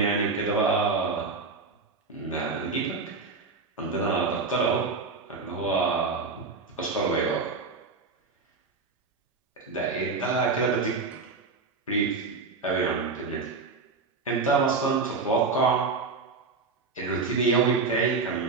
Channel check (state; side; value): quieter; left; 4.3 dB